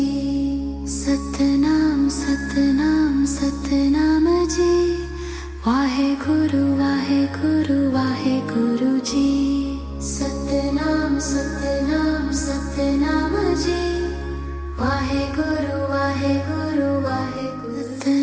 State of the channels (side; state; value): both; identical; correlation 1.00